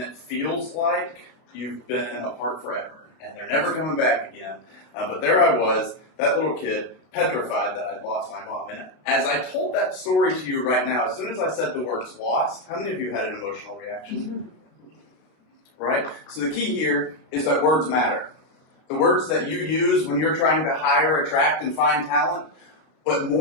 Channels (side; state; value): right; late; 32 ms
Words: it feels like you've been apart forever, and they're never coming back again. But there I was, that little kid, petrified that I'd lost my mom. And as I told that story to you right now, as soon as I said the words lost, how many of you had an emotional reaction? Right? So the key here is that words matter. The words that you use when you're trying to hire, attract, and find talent, but